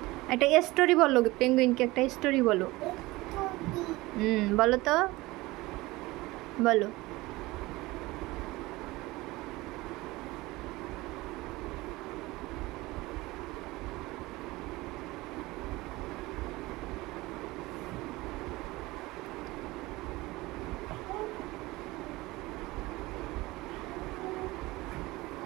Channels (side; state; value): left; quieter; 20.5 dB